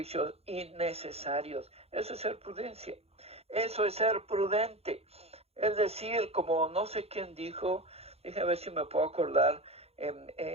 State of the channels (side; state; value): left; late; 0.29 ms